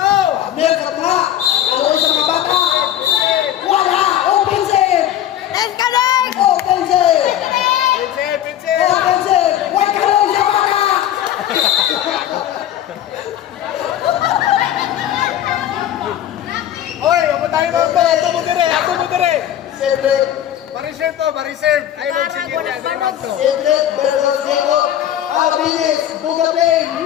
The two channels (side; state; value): right; quieter; 11.3 dB